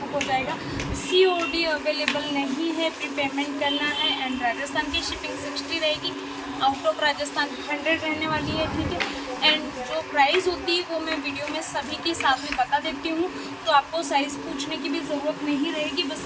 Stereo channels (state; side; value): identical; both; correlation 1.00